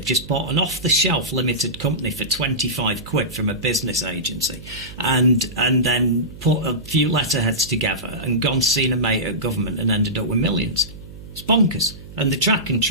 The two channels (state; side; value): noise; right; hum, 16 dB below the sound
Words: just bought an off-the-shelf limited company for 25 quid from a business agency, and then put a few letterheads together and gone seen a mate at government and ended up with millions. It's bonkers. And the track and